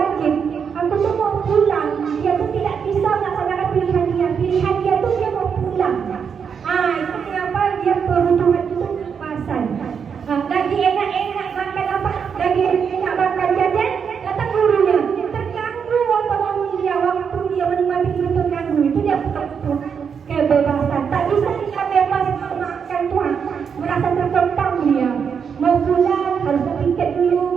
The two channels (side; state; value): left; quieter; 6.7 dB